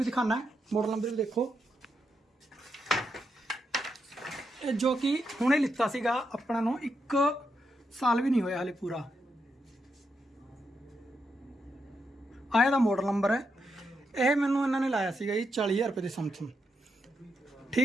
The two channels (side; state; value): both; normal; correlation 0.83